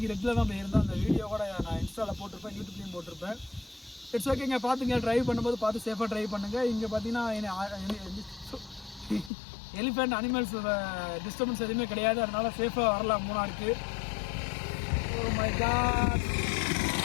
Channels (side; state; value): right; drops out; at 9.3 s